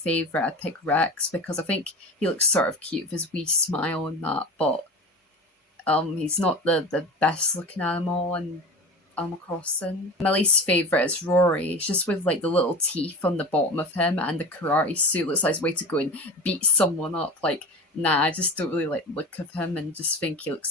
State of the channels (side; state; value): both; normal; correlation 0.31